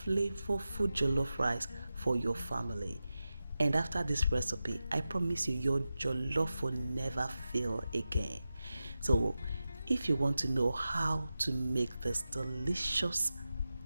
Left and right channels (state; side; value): inverted; both; correlation -0.93